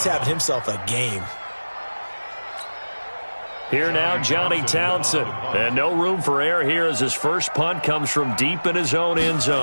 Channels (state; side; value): inverted; both; correlation -1.00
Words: having himself a game. Here now, Johnny Townsend. And no room for error here as his first punt comes from deep in his own end